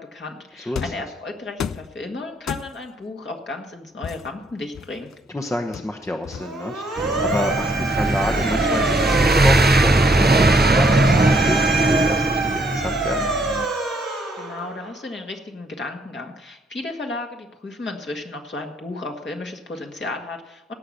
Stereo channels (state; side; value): normal; both; correlation 0.70